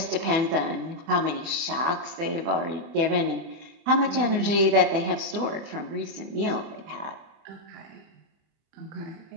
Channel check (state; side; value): late; left; 24 ms